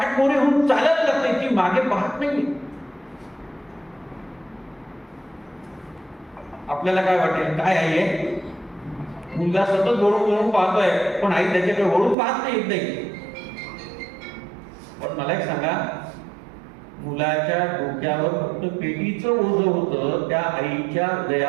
होऊन चालायला लागते, ती मागे पाहत नाही. आपल्याला काय वाटेल, काय आई आहे, मुलगा सतत वळून वळून पाहतोय पण आई त्याच्याकडे वळून पाहत नाही, येत नाही. पण मला एक सांगा, मुलाच्या डोक्यावर फक्त पेटीचं ओझं होतं, त्या आईच्या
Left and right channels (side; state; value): left; drops out; at 12.2 s